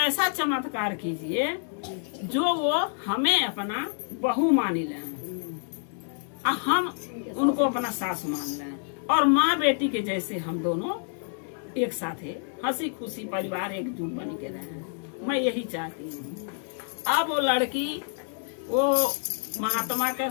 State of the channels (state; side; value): silent; right; 55 dB below the other